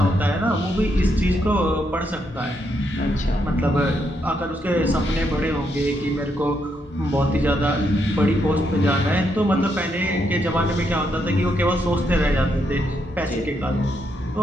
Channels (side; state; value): both; normal; correlation 0.78